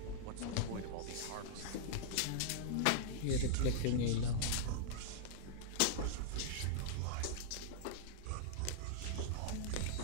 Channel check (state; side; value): different; both; correlation -0.02